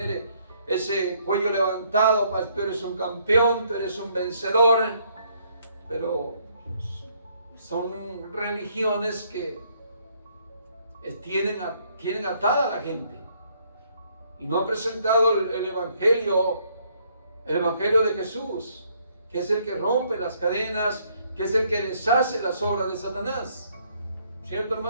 ese cuello levantado: pues, tú eres un campeón, tú eres un vencedor. Pero son religiones que tienen atada a la gente y no han presentado el Evangelio de Jesús, que es el que rompe las cadenas, que es el que deshace las obras de Satanás. ¿Cierto,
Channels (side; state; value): both; inverted; correlation -0.68